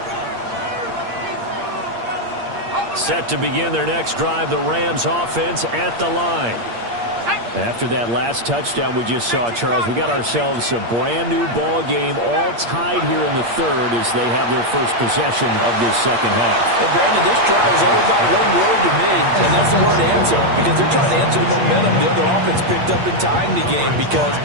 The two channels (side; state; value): left; late; 8.6 ms